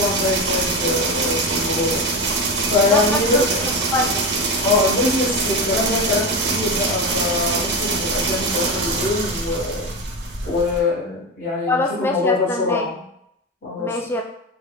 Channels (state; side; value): normal; both; correlation 0.18